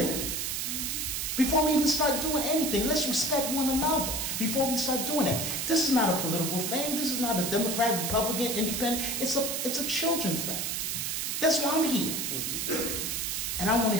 Before we even start doing anything, let's respect one another before we start doing it. This is not a political thing. This is not a Democrat, Republican, Independent. It's a children thing. That's why I'm here. And I want to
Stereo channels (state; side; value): noise; right; hiss, 1 dB below the sound